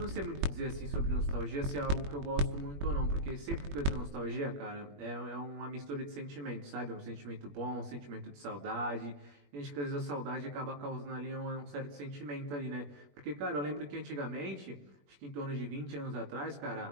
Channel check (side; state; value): left; late; 21 ms